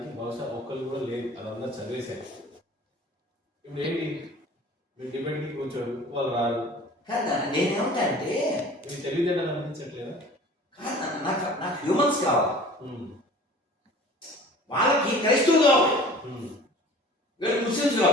బహుశా ఒక్కరు కూడా లేదు, అదంతా చదివేశారు. ఇప్పుడు ఏంటి, మీరు డిబేట్కి కూర్చోరు, వాళ్ళు రారు కదా. నేనేమంటా అంటే మీకు తెలివితేటలు అనిపించట్లేదా? కాదు, నాకు హ్యూమన్స్ కావాలి, వాళ్ళకి క్రైస్తవులు కావాలి, వీళ్ళకి ముస్లిమ్స్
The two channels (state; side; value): normal; both; correlation 0.44